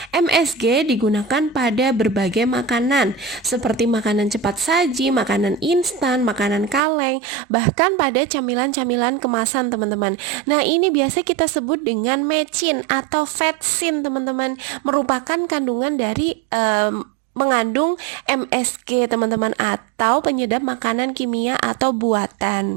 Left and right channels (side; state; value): left; drops out; at 6.8 s